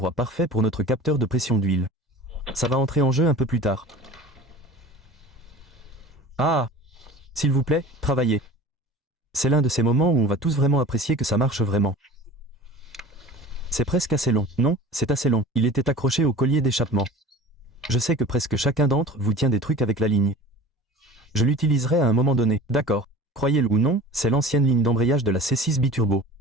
parfait pour notre capteur de pression d'huile. Ça va entrer en jeu un peu plus tard. Ah! S'il vous plaît, travaillez. C'est l'un de ces moments où on va tous vraiment apprécier que ça marche vraiment. C'est presque assez long. Non, c'est assez long. Il était accroché au collier d'échappement. Je sais que presque chacun d'entre vous tient des trucs avec la ligne. Je l'utiliserai à un moment donné. D'accord. Croyez-le ou non, c'est l'ancienne ligne d'embrayage de la C6 biturbo.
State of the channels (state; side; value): normal; both; correlation 0.40